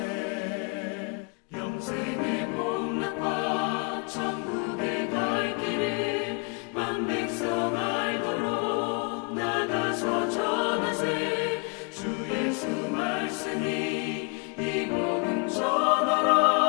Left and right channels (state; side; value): quieter; right; 33.9 dB